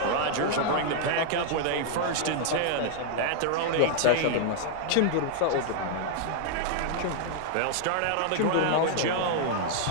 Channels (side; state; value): both; different; correlation 0.00